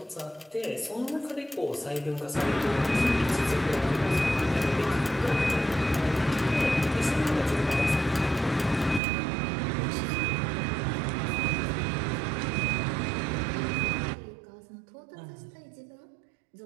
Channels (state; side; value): drops out; left; at 9.0 s